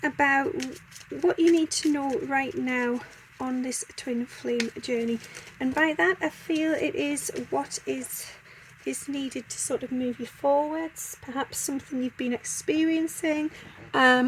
about what you need to know right now on this twin flame journey, and by that I feel it is what is needed to sort of move you forwards, perhaps something you've been experiencing,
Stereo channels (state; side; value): identical; both; correlation 1.00